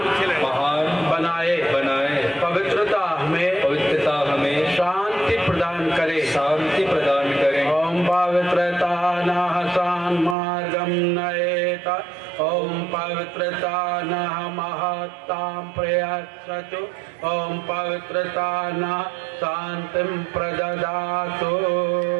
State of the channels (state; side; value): drops out; left; at 10.4 s